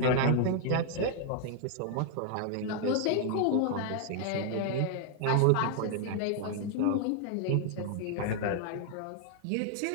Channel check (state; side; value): different; both; correlation 0.00